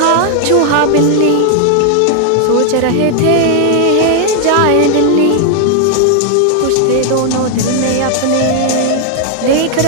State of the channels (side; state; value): both; different; correlation 0.00